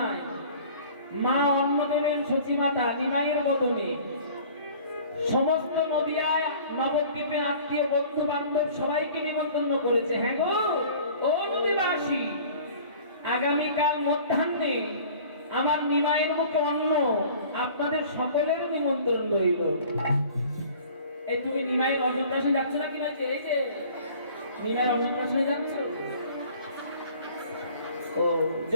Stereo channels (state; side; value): inverted; both; correlation -0.48